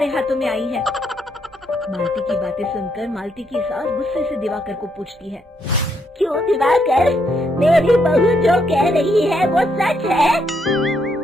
हाथों में आई है। मालती की बातें सुनकर मालती की सास गुस्से से दिवाकर को पूछती है, क्यों दिवाकर, मेरी बहू जो कह रही है वो सच है?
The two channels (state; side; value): normal; both; correlation 0.75